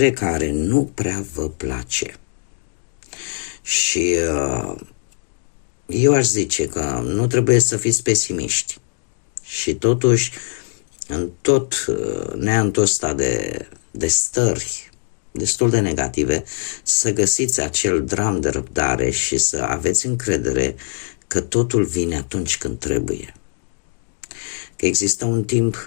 care nu prea vă place. Și eu aș zice că nu trebuie să fiți pesimiști. Și totuși, în tot neantul ăsta de stări destul de negative, să găsiți acel dram de răbdare și să aveți încredere că totul vine atunci când trebuie. Că există un timp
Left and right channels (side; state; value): right; silent; digital silence